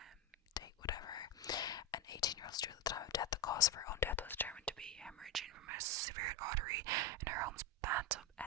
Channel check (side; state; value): both; normal; correlation 0.11